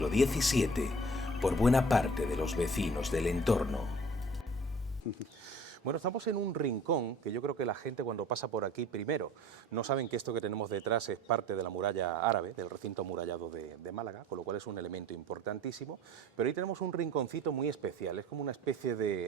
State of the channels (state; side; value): normal; both; correlation 0.47